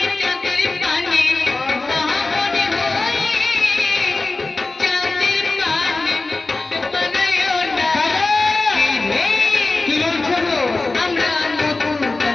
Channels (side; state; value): right; quieter; 3.4 dB